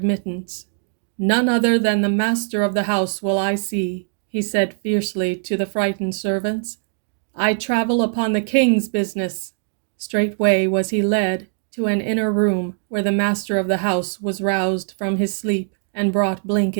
"None other than the master of the house will I see," he said fiercely to the frightened servants. "I travel upon the king's business." Straightway was he led to an inner room, where the master of the house was roused from his sleep and brought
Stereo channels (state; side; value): silent; left; digital silence